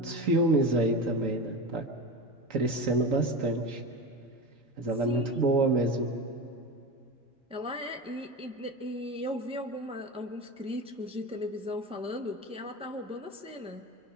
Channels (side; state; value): both; normal; correlation 0.25